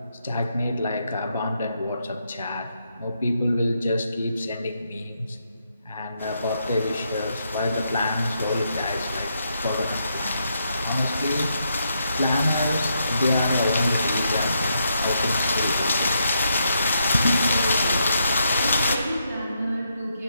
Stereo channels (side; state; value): both; inverted; correlation -0.79